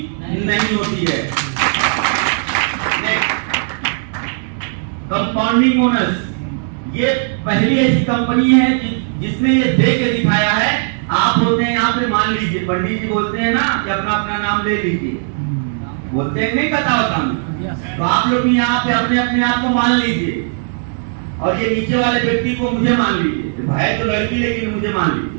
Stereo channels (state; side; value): silent; left; 68 dB below the other